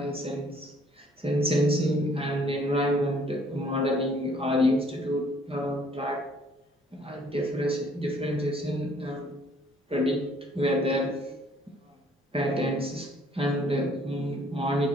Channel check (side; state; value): both; normal; correlation 0.61